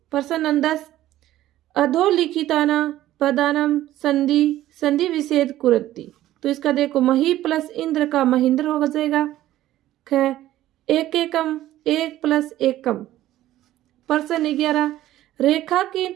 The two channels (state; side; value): quieter; left; 14.2 dB